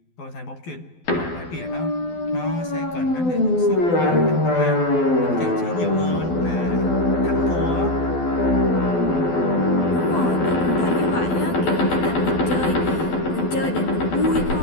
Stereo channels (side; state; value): right; late; 12 ms